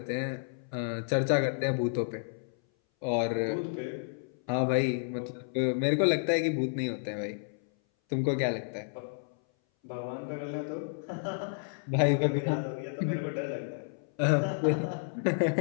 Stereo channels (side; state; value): right; silent; 57 dB below the other